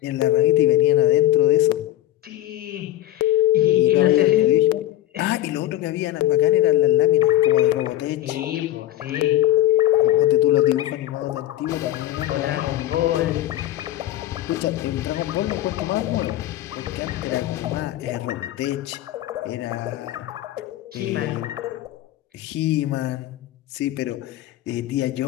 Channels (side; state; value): right; quieter; 13.9 dB